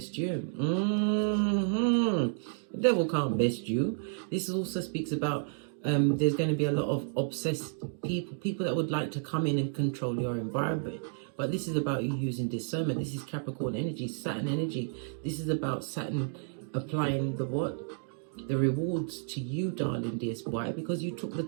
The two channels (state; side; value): silent; left; digital silence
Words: you. The devil can't best you. This also speaks about there's going to be a lot of obsessed people that would like to come in and control your environment. But this is about you using discernment. This is Capricorn energy, Saturn energy. This is about Saturn applying the what? The rewards to you, darling dears. Why? Because you took the